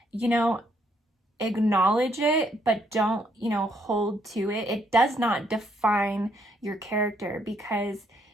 you know, acknowledge it, but don't, hold to it. It does not define your character, because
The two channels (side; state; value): both; normal; correlation 0.71